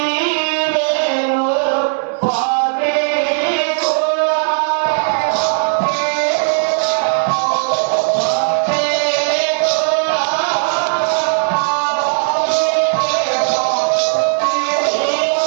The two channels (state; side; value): silent; left; digital silence